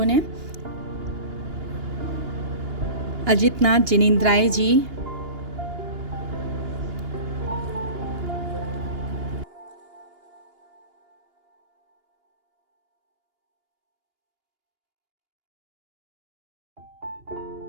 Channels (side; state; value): left; late; 2.8 ms